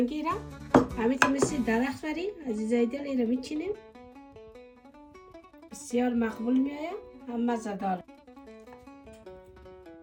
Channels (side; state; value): both; identical; correlation 1.00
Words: را همین که مثل درخت بریم عزیزای دل این را میچینیم بسیار مقبول میآید هم مزه دار.